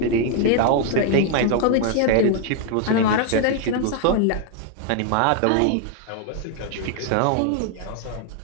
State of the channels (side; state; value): both; different; correlation 0.00